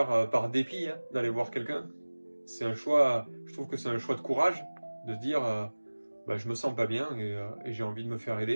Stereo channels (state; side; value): inverted; both; correlation -1.00